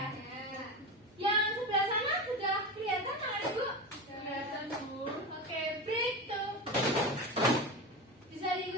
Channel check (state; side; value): normal; both; correlation 0.23